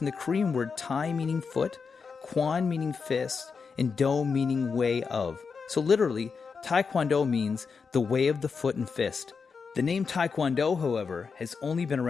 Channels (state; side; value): quieter; right; 5.4 dB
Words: the Korean word Tae meaning foot, Kwon meaning fist, and Do meaning way of. So literally, Tae Kwon Do means the way of the foot and fist. The name Tae Kwon Do, however, has only been